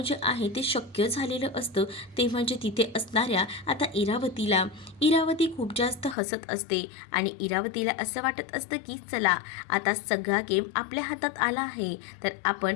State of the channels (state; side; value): drops out; right; at 6.2 s